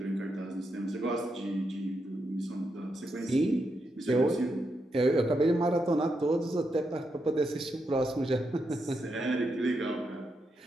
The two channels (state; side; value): normal; both; correlation 0.83